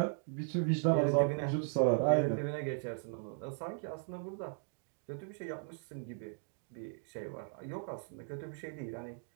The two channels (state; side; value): silent; left; 53 dB below the other